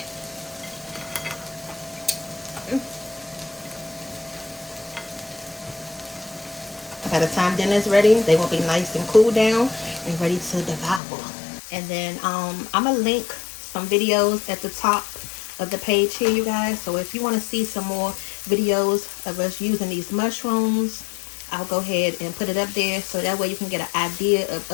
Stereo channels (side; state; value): right; drops out; at 11.0 s